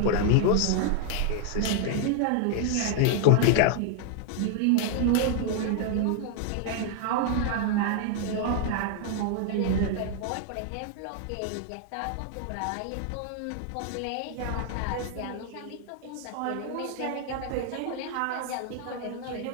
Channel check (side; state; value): both; different; correlation 0.00